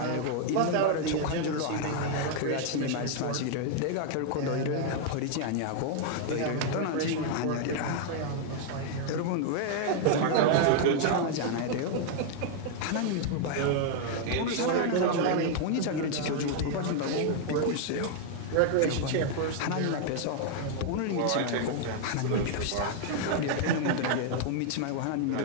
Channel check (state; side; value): different; both; correlation 0.00